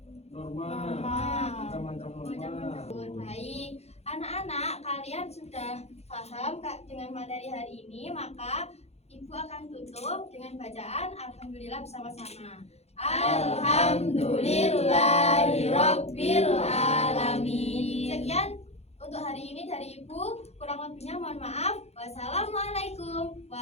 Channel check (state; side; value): late; right; 0.31 ms